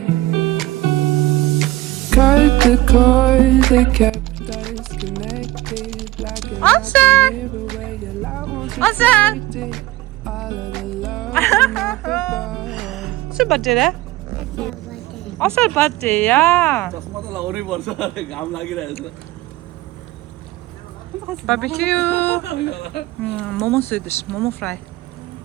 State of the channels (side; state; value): left; quieter; 17.8 dB